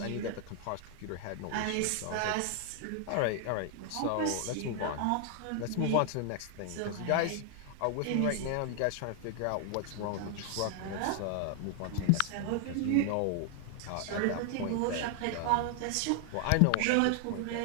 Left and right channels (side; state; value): both; different; correlation 0.00